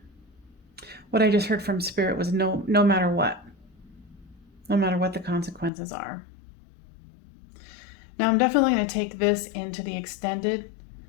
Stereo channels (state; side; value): drops out; right; at 5.7 s